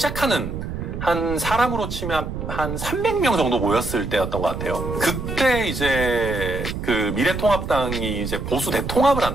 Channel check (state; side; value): noise; right; rumble, 6 dB below the sound